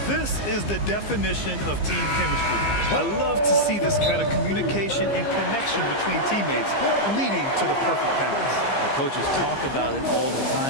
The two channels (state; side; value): late; right; 15 ms